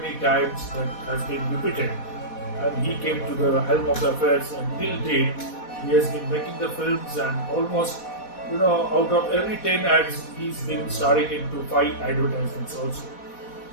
times that has been repeated. And he came to the helm of the affairs, and till date he has been making the films, and almost out of every 10 ads he's been starring into 5 advertisements also.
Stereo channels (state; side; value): late; right; 4.1 ms